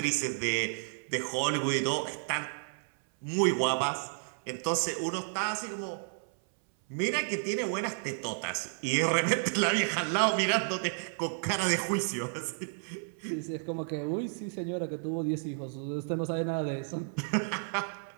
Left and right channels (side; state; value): left; silent; 57 dB below the other